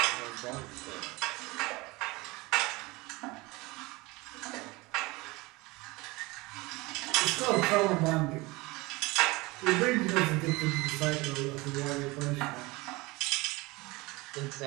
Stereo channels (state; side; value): quieter; left; 22.9 dB